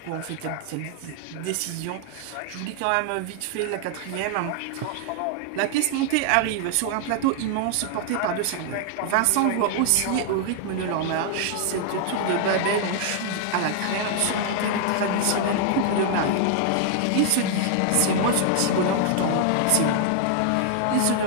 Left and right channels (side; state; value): both; different; correlation 0.00